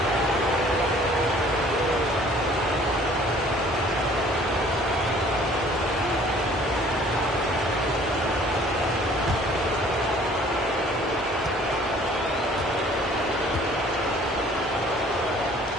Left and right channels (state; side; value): normal; both; correlation 0.54